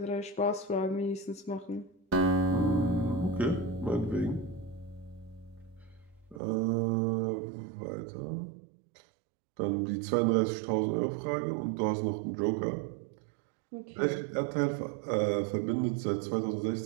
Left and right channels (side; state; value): left; drops out; at 6.4 s